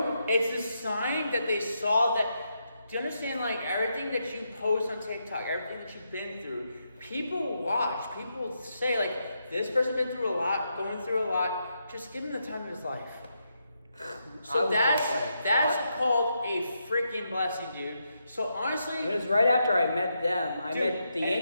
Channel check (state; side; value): inverted; both; correlation -0.82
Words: it's a sign that they saw that. Do you understand? Everything that you post on TikTok, everything that you've been through, people watch. People say this person's been through a lot, going through a lot. Just give him the time of his life. So that's called a freaking blessing, dude. So honestly, it was right after I met them. I met the